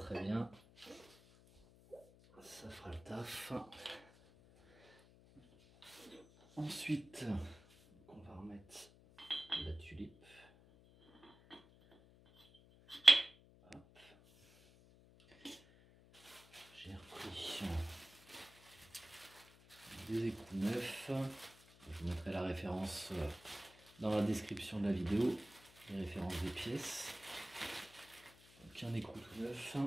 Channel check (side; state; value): left; noise; hum, 24 dB below the sound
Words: bien. Ça fera le taf. Ensuite, on va remettre la tulipe. Hop. J'ai repris des écrous neufs. Je vous mettrai la référence dans la description de la vidéo, les références des pièces. Donc un écrou tout neuf.